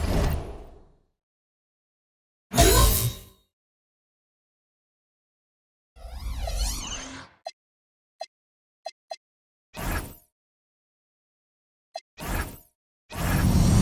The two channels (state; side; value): identical; both; correlation 1.00